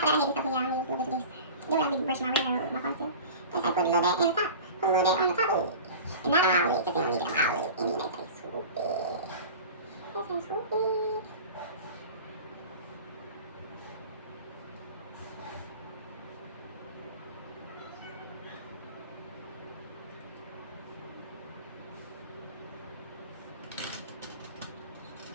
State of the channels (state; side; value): inverted; both; correlation -0.36